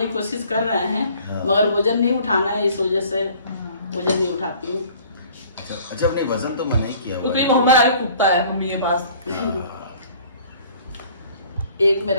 की कोशिश कर रहे हैं, मगर वजन नहीं उठाना है, इस वजह से वजन नहीं उठाती हूँ। अच्छा, अपने वजन तो मना ही किया क्योंकि मोहम्मद आगे कुत्ता है मम्मी के पास। एक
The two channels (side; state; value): both; inverted; correlation -0.53